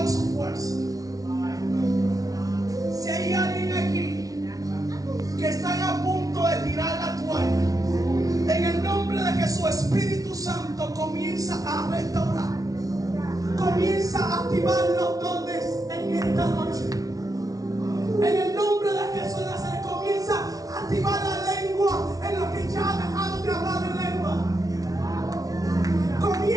su fuerza, si hay alguien aquí que están a punto de tirar la toalla, en el nombre de Jesús, Espíritu Santo comienza a restaurar, comienza a activar los dones en esta noche. En el nombre de Jesús de Nazaret, comienza a activar la lengua en los que ya dejaron de hablar en lengua.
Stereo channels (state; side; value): late; left; 0.18 ms